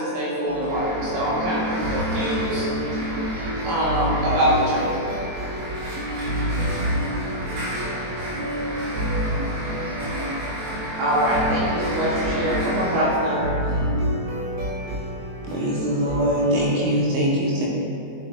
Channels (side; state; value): left; late; 23 ms